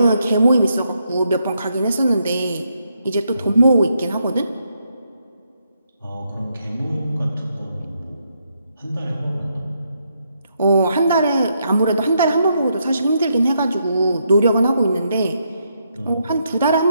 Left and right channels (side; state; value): both; inverted; correlation -0.78